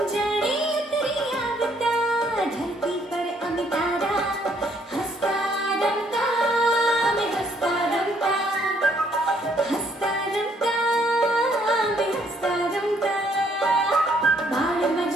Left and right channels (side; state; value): both; normal; correlation 0.67